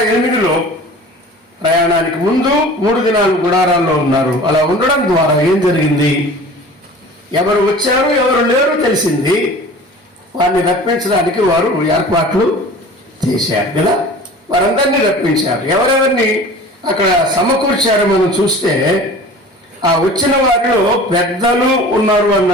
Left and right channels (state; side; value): normal; both; correlation 0.42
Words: 8లో ప్రయాణానికి ముందు 3 దినాలు గుడారాల్లో ఉన్నారు. అలా ఉండడం ద్వారా ఏం జరిగింది? ఎవరు వచ్చారు, ఎవరు లేరు తెలిసింది. వారిని రప్పించడానికి వారు ఏర్పాట్లు చేశారు కదా. వారందరినీ రప్పించారు. ఎవరెవరిని అక్కడ సమకూర్చారు మనం చూస్తే, ఆ వచ్చిన వారిలో పెద్దలు ఉన్నారు